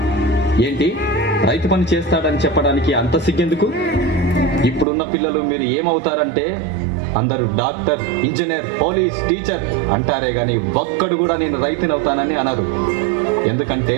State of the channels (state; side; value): drops out; left; at 4.9 s